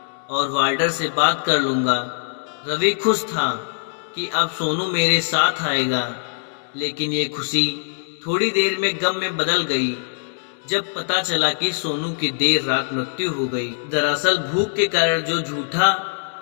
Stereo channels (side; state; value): right; silent; digital silence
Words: और वार्डर से बात कर लूँगा। रवि खुश था कि अब सोनू मेरे साथ आएगा, लेकिन ये खुशी थोड़ी देर में गम में बदल गई जब पता चला कि सोनू की देर रात मृत्यु हो गई। दरअसल भूख के कारण जो झूठा